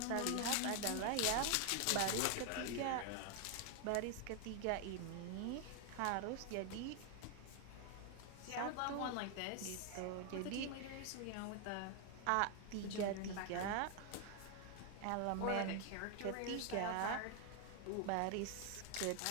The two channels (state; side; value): different; both; correlation 0.00